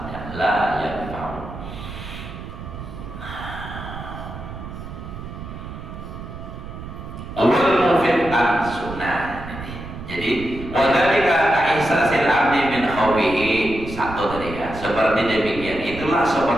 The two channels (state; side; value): noise; right; rumble, 11 dB below the sound